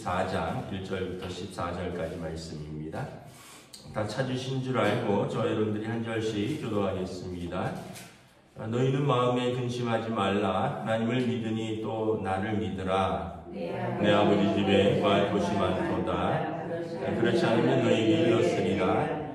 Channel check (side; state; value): both; identical; correlation 1.00